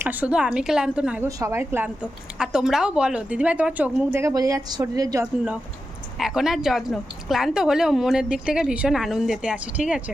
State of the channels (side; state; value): both; normal; correlation 0.90